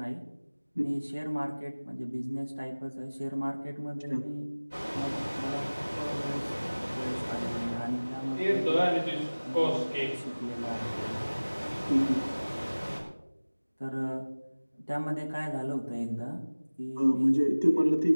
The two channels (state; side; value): inverted; both; correlation -1.00